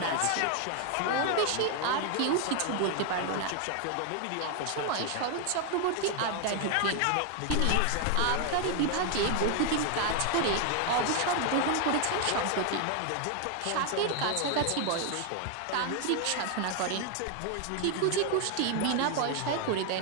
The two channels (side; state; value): both; different; correlation 0.01